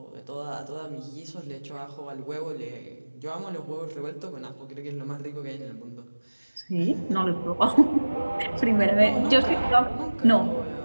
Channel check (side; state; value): both; inverted; correlation -1.00